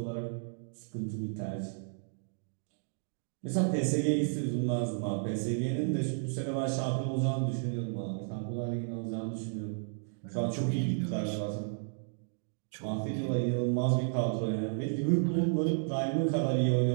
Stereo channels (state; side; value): silent; left; digital silence